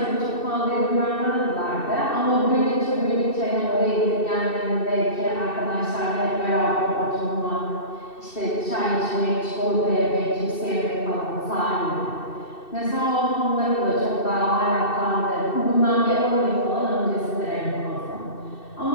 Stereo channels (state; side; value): late; right; 2.7 ms